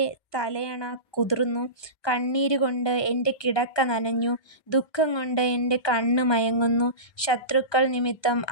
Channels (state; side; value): late; right; 1.2 ms